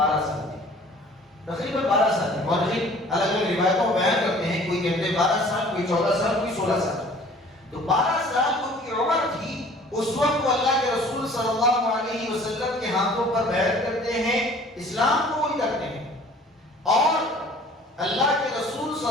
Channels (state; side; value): normal; both; correlation 0.50